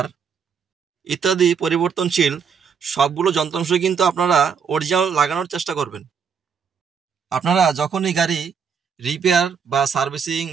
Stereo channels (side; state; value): left; quieter; 6.5 dB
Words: ইত্যাদি পরিবর্তনশীল সবগুলো যন্ত্রাংশ কিন্তু আপনারা অরিজিনাল লাগানোর চেষ্টা করবেন। আপনারা যখনই গাড়ি রিপেয়ার বা সার্ভিসিং